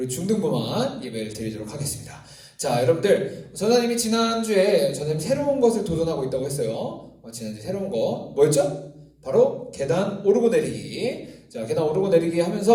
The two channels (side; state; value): both; identical; correlation 1.00